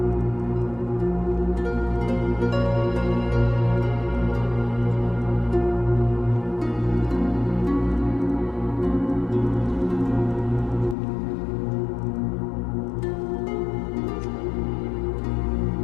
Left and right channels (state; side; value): drops out; right; at 11.0 s